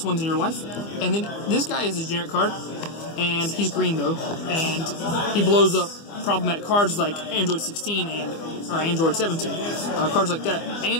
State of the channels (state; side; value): late; right; 25 ms